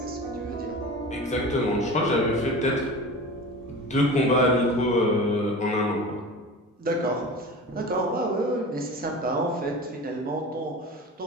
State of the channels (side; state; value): both; normal; correlation 0.34